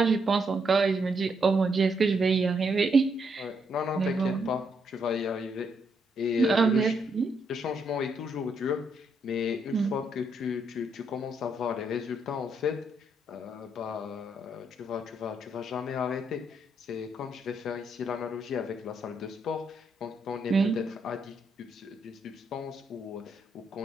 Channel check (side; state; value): both; normal; correlation 0.76